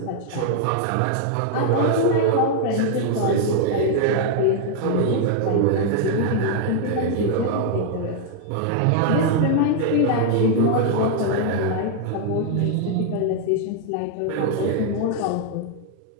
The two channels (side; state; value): both; different; correlation 0.00